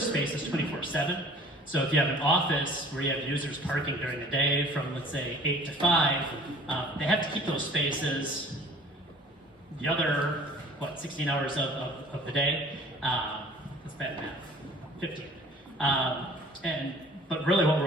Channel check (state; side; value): normal; both; correlation 0.50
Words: spaces 24/7. So if you have an office where you have users parking during the day from, let's say, 8 to 5, they have to keep those spaces the other, 16 hours of the day. That's bad math, 15. But really what